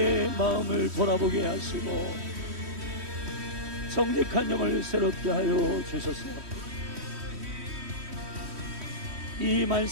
마음을 돌아보게 하시고 정직한 영을 새롭게 하여 주소서. 이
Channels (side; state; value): left; late; 3.1 ms